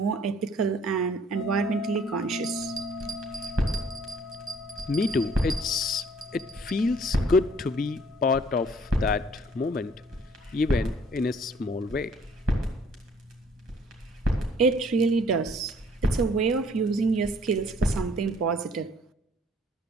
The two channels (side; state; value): both; normal; correlation 0.59